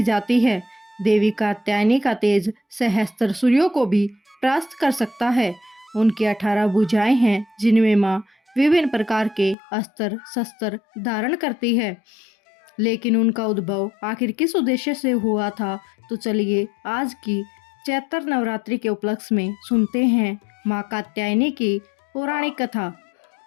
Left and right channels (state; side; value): drops out; right; at 9.6 s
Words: जाती है। देवी कात्यायनी का तेज सहस्त्र सूर्यों को भी परास्त कर सकता है। उनकी 18 भुजाएं हैं जिनमें माँ विभिन्न प्रकार के अस्त्र शस्त्र धारण करती है। लेकिन उनका उद्भव आखिर किस उद्देश्य से हुआ था, तो चलिए आज की चैत्र नवरात्रि के उपलक्ष्य में सुनते हैं माँ कात्यायनी की पौराणिक कथा।